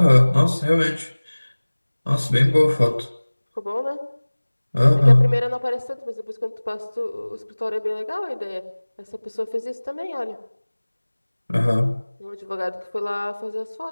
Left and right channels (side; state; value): both; inverted; correlation -1.00